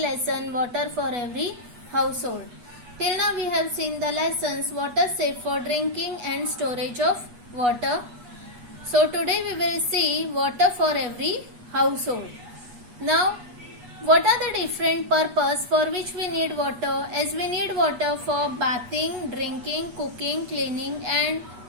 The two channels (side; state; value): left; late; 8.3 ms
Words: water for every household. Till now we have seen the lessons water safe for drinking and storage of water. So today we will see water for every household. Now what are the different purpose for which we need water? As we need water for bathing, drinking, cooking, cleaning and